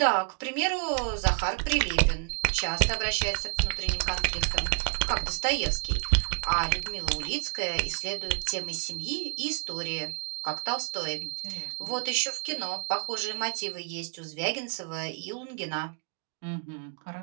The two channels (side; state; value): left; quieter; 33.6 dB